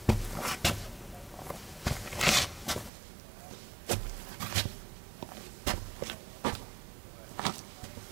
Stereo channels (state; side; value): drops out; left; at 2.9 s